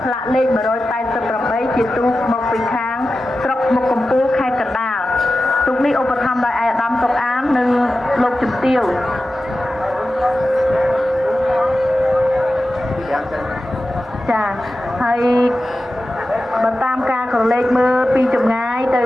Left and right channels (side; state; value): both; normal; correlation 0.93